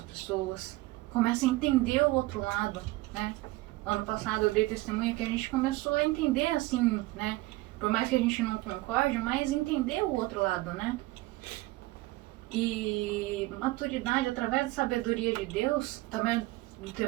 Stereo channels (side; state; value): left; quieter; 19.8 dB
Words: pessoas. Começa a entender o outro lado, né? Ano passado eu dei testemunho que a gente começou a entender assim, né? Por mais que a gente não concorde, mas entender o outro lado, né? E maturidade, através da sabedoria de Deus, também do